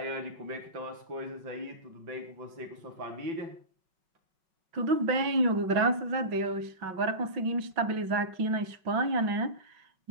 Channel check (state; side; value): late; left; 5.4 ms